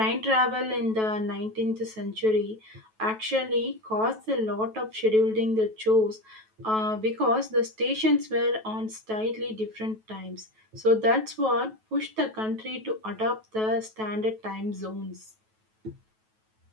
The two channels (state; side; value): late; left; 9.2 ms